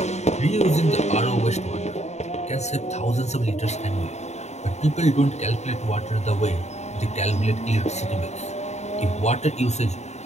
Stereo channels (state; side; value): late; right; 0.32 ms